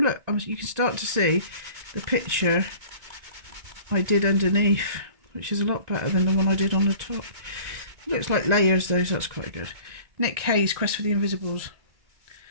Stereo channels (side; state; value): left; late; 1.9 ms